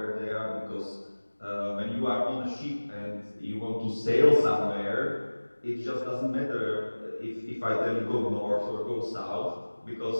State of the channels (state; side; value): inverted; both; correlation -1.00